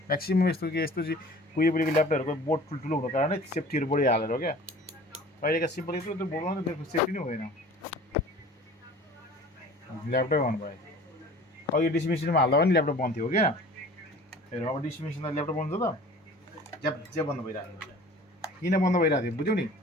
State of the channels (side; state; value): both; normal; correlation 0.45